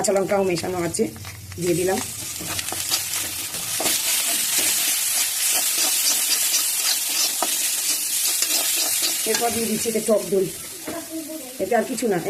লঙ্কাও মেশানো আছে, দিয়ে দিলাম। এরপর দিয়ে দিচ্ছি এটা টক দই, এটা আর কিছু না,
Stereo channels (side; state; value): both; identical; correlation 1.00